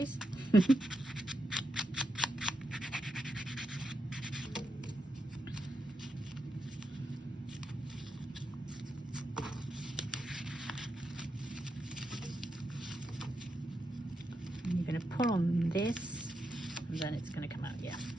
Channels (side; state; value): both; normal; correlation 0.85